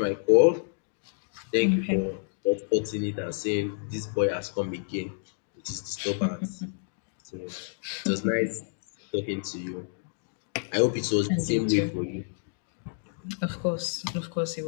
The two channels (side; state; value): right; silent; digital silence